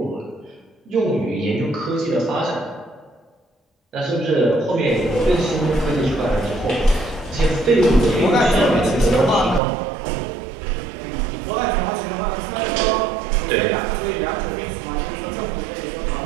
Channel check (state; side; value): drops out; left; at 9.6 s